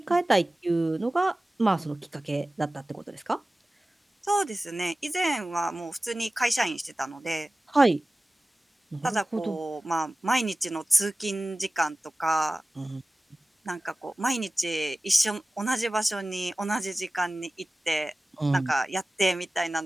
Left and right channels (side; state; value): both; normal; correlation 0.97